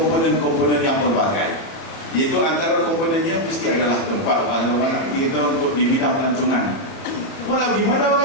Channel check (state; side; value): late; right; 31 ms